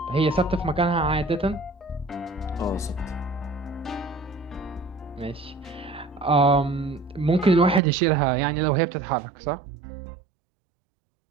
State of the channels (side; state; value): left; drops out; at 7.8 s